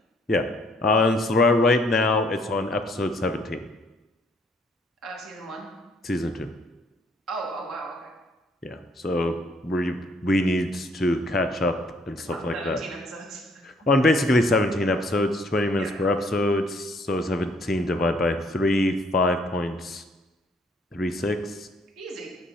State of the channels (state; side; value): normal; both; correlation 0.64